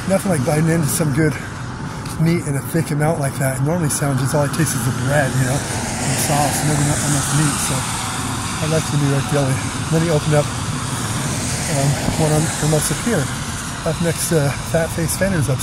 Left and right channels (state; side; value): identical; both; correlation 1.00